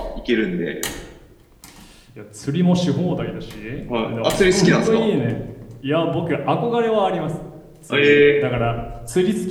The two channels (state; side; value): identical; both; correlation 1.00